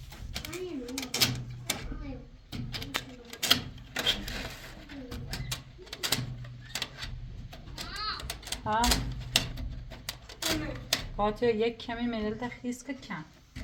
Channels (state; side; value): identical; both; correlation 1.00